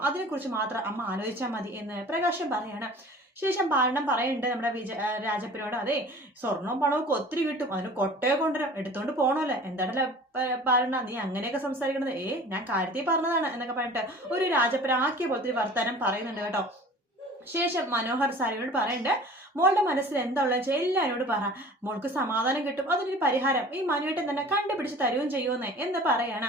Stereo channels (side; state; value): both; normal; correlation 0.44